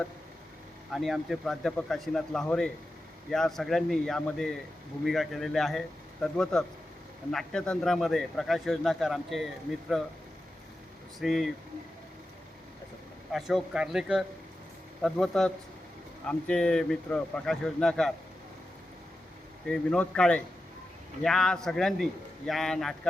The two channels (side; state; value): both; normal; correlation 0.91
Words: आणि आमचे प्राध्यापक काशीनाथ लाहोरे या सगळ्यांनी यामध्ये भूमिका केलेल्या आहे. तद्वतच नाट्यतंत्रामध्ये प्रकाश योजनाकार आमचे मित्र श्री अशोक कार्लेकर, तद्वतच आमचे मित्र प्रकाश योजनाकार ते विनोद काळे या सगळ्यांनी या